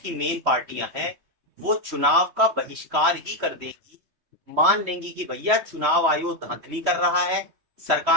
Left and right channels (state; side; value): late; left; 3.1 ms